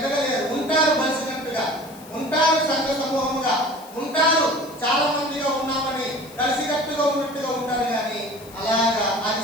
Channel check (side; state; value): left; noise; hiss, 21 dB below the sound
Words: ఉంటారు కలిసినట్టుగా, ఉంటారు సంఘ సమూహముగా, ఉంటారు చాలా మందిగా ఉన్నామని కలిసికట్టుగా ఉన్నట్టుగా ఉంటారు. కానీ అలాగా అది